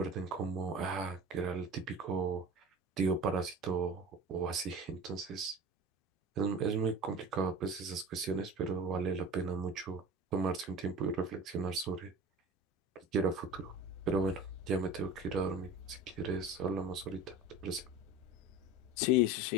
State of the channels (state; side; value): normal; both; correlation 0.35